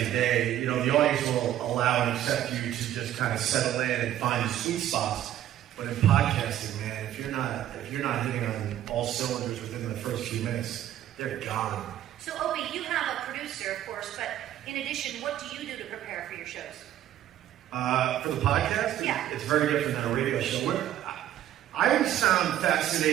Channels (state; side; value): quieter; left; 12.1 dB